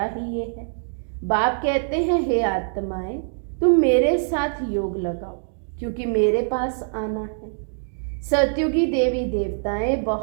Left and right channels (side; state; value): left; silent; digital silence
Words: ही ये है। बाप कहते हैं हे आत्माएं तुम मेरे साथ योग लगाओ, क्योंकि मेरे पास आना है। सतयुगी देवी देवताएं